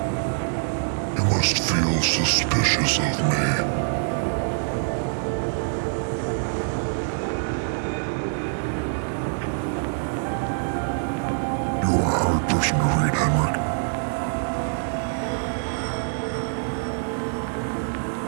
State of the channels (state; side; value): silent; left; digital silence